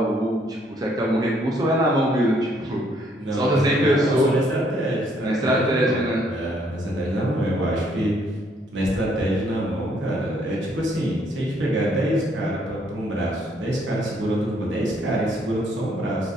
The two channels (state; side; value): normal; both; correlation 0.68